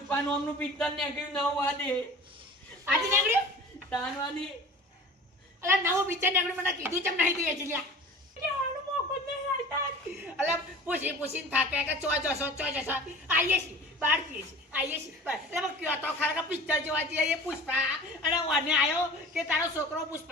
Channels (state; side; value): normal; both; correlation 0.40